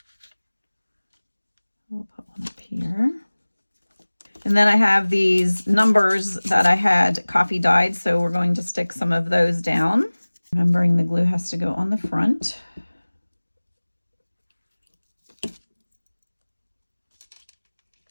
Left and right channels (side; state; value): both; inverted; correlation -1.00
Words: We'll put one up here. And then I have these numbers that I had coffee dyed, so we're going to stick some of those down. Remembering the glue has to go on the front.